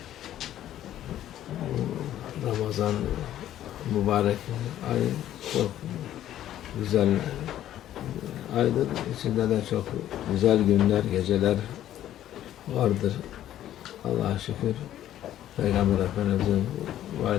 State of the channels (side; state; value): right; quieter; 12.2 dB